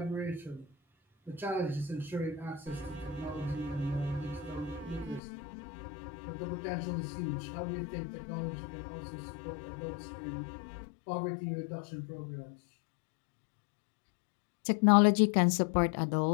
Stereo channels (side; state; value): right; drops out; at 5.2 s